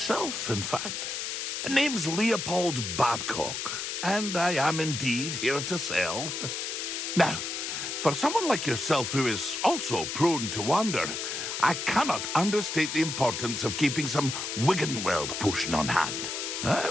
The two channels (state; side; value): noise; left; hiss, 4 dB below the sound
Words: in fact. Name's Leopold Babcock, and I am indeed here to sell. Now, for someone like yourself who is also prone to wander, I cannot understate the importance of keeping some Wiggenweld potion on hand. I